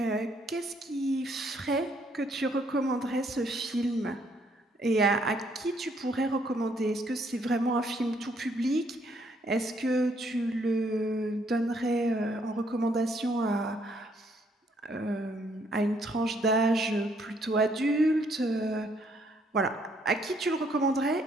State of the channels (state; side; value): normal; both; correlation 0.68